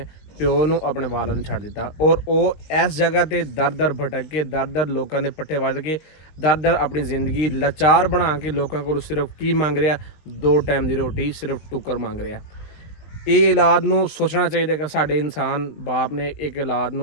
ਪਿਓ ਨੂੰ ਆਪਣੇ ਵਾਲਿਦ ਨੂੰ ਛੱਡ ਦਿੱਤਾ ਔਰ ਉਹ ਇਸ ਜਗ੍ਹਾ ਤੇ ਦਰ ਭਟਕ ਕੇ ਦਰ ਲੋਕਾਂ ਦੇ ਪੱਠੇ ਵੱਢ ਕੇ ਦਰ ਆਪਣੀ ਜ਼ਿੰਦਗੀ ਲਾਚਾਰ ਬਣਾ ਕੇ ਲੋਕਾਂ ਕੋਲ ਸਿਰਫ ਕੀ ਮੰਗ ਰਿਹਾ, 2 ਟਾਈਮ ਦੀ ਰੋਟੀ, ਸਿਰਫ ਟੁੱਕਰ ਮੰਗ ਰਿਹਾ। ਇਹ ਔਲਾਦ ਨੂੰ ਸੋਚਣਾ ਚਾਹੀਦਾ ਕਿ ਸਾਡੇ ਇਨਸਾਨ ਬਾਪ ਨੇ ਇੱਕ ਔਲਾਦ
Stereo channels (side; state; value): right; late; 20 ms